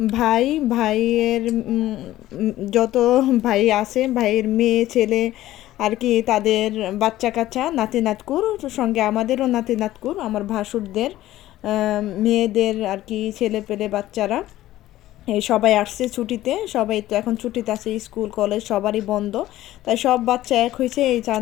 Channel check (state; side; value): quieter; right; 14.9 dB